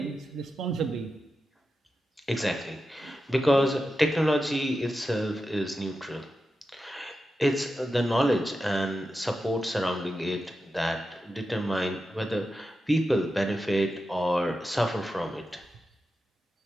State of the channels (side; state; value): both; normal; correlation 0.90